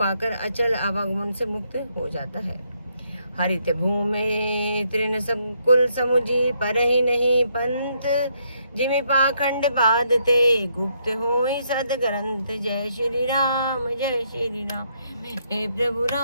अचल आवागमन से मुक्त हो जाता है। हरित भूमि तृण संकुल समुझी, पर ही नहीं पंथ। जिमि पाखंड बाधते, गुप्त होई सद ग्रंथ। जय श्री राम जय श्री राम, हे प्रभु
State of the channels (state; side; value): inverted; both; correlation -0.74